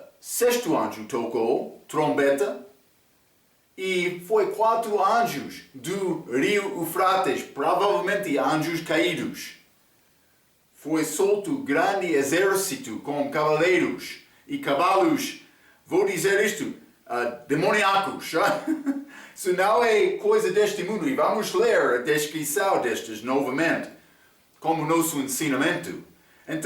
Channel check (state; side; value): identical; both; correlation 1.00